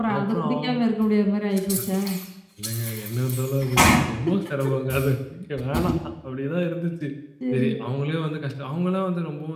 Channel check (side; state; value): both; identical; correlation 1.00